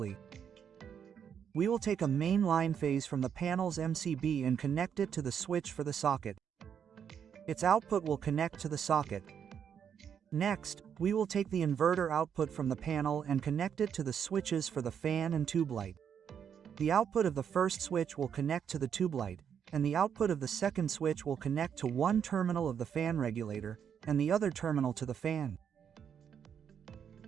We will take a main line phase from the panel's MCB and connect it to the switch for the socket. Its output will connect to the socket. Next, we will take the inverter output from the panel and connect it to the switches for the fan and tube light. The output of the first switch will connect to the tube light, and the output of the second switch will connect to one terminal of the fan regulator, and the other terminal to the fan.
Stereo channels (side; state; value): left; quieter; 8.0 dB